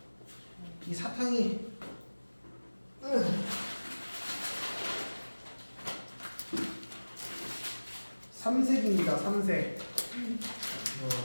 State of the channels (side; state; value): both; inverted; correlation -1.00